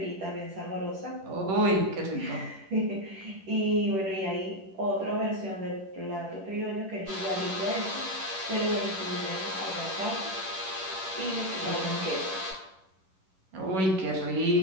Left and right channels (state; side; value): late; left; 10 ms